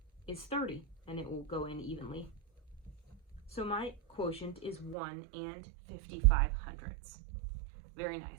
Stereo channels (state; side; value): drops out; left; at 5.0 s